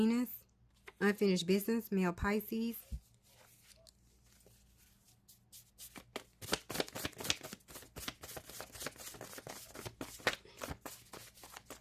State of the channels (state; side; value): identical; both; correlation 1.00